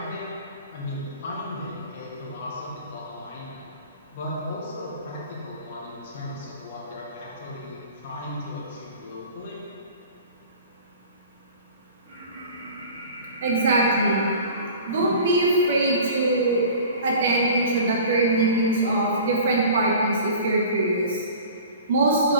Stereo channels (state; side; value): inverted; both; correlation -0.42